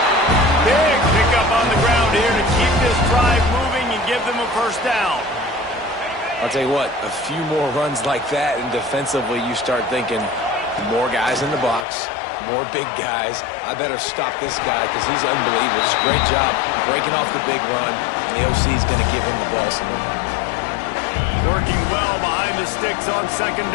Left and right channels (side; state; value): right; drops out; at 11.9 s